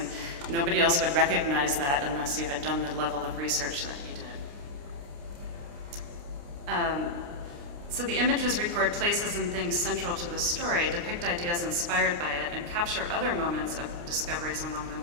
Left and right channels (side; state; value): left; late; 29 ms